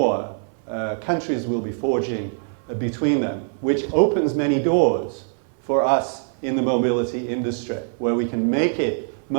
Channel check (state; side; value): silent; left; 58 dB below the other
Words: countries will be forging between them, which opens many doors for us in the mobility industry, where we can make it